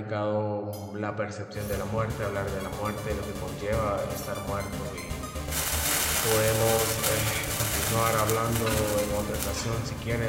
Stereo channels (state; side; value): identical; both; correlation 1.00